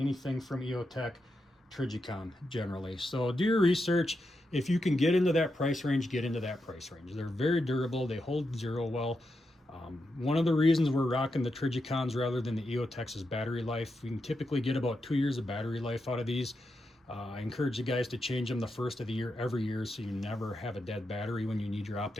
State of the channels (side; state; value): both; normal; correlation 0.86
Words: from EOTech, Trijicon generally. So do your research. If you can get into that price range, get into that price range. They're very durable. They hold zero well. One of the reasons we're rocking the Trigicons rather than the EOTech's is battery life. We can typically get about 2 years of battery life out of these. I encourage you guys to change them the first of the year every year so you never have a dead battery when you need your